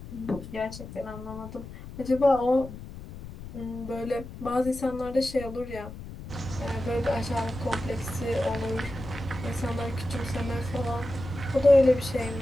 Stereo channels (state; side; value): noise; left; rumble, 12 dB below the sound